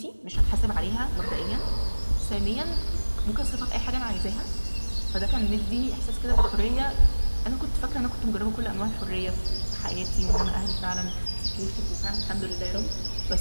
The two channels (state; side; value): inverted; both; correlation -1.00